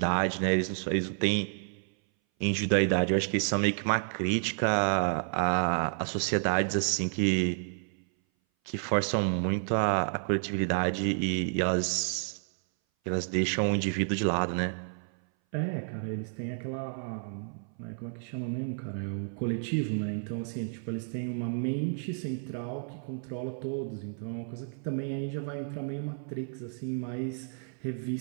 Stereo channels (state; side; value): silent; left; 57 dB below the other